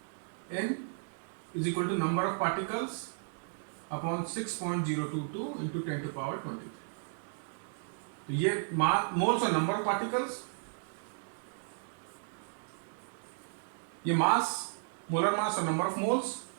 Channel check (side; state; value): left; silent; 55 dB below the other